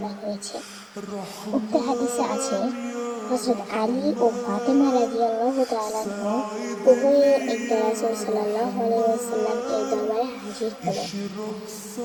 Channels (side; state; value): both; identical; correlation 1.00